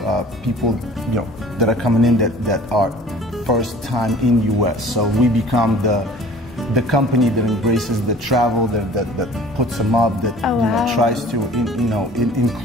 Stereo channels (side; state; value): both; normal; correlation 0.48